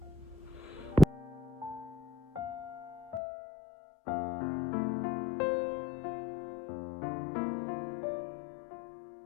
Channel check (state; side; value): drops out; right; at 3.2 s